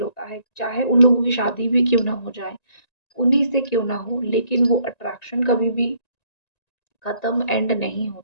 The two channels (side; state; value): right; late; 1.9 ms